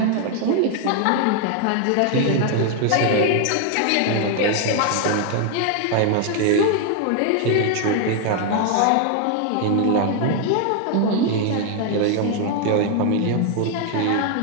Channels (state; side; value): different; both; correlation 0.00